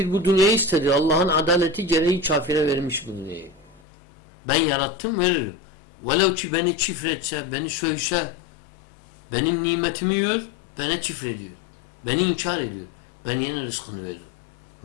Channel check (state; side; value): drops out; right; at 3.8 s